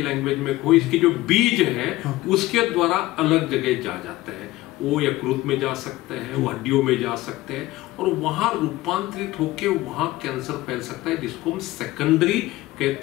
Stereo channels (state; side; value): quieter; right; 17.8 dB